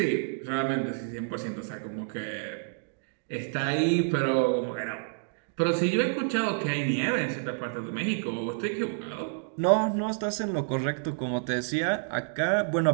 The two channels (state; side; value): silent; left; digital silence